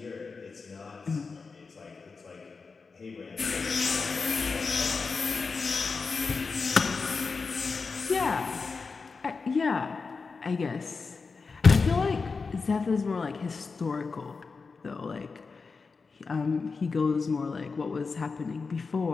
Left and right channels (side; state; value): right; quieter; 4.6 dB